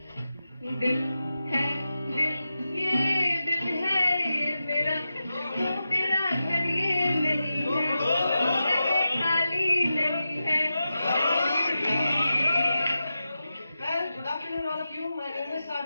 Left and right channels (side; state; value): both; inverted; correlation -0.91